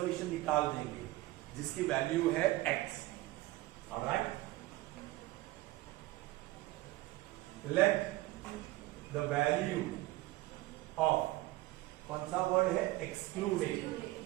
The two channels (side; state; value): left; quieter; 18.6 dB